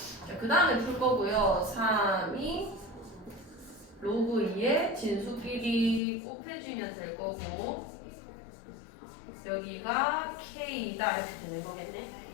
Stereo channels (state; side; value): drops out; right; at 6.0 s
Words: 자, 그 다음에 풀 거고요. 3이 로그 2의 진수끼리 곱해주면 될 거고 여기가 k다 이렇게 되는 거겠네.